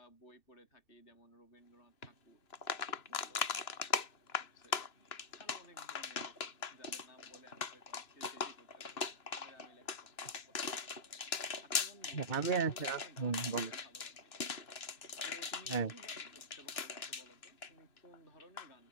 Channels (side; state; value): right; late; 2.6 ms